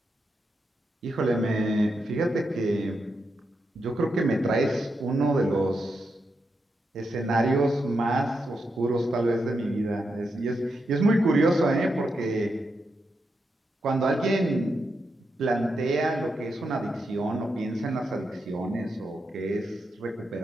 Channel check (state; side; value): normal; both; correlation 0.85